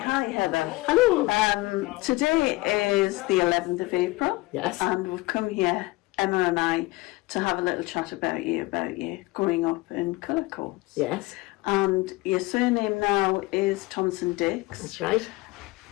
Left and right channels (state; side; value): quieter; right; 21.2 dB